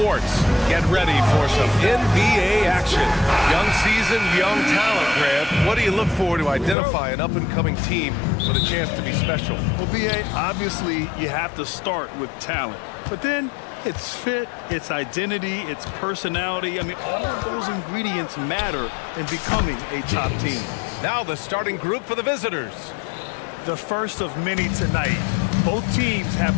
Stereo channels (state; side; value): drops out; right; at 6.8 s